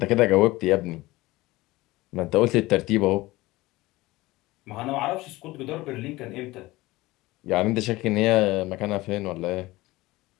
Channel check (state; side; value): quieter; right; 19.6 dB